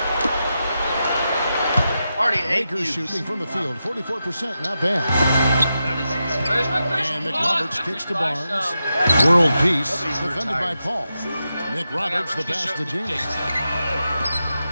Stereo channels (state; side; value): inverted; both; correlation -0.89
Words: Already 8 Lakers views. shooting from the field, 44%, not bad. Where's my Christian And Paul? McRoberts kicks to Barnes. World peace, defended by Paul. McRoberts the pass to Jameson.